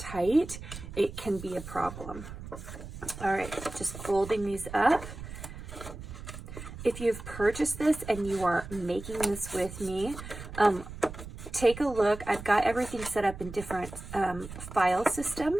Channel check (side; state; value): right; noise; rumble, 12 dB below the sound